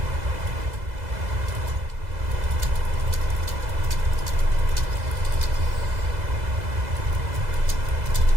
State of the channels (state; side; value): late; left; 2.0 ms